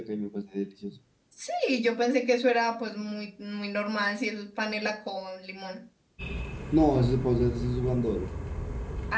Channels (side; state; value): both; identical; correlation 1.00